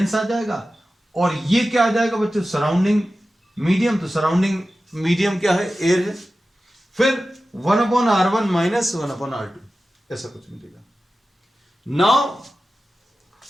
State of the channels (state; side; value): normal; both; correlation 0.94